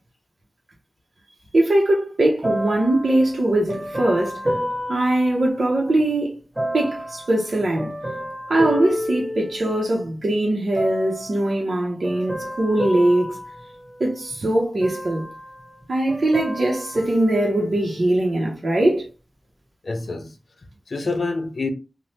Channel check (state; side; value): normal; both; correlation 0.93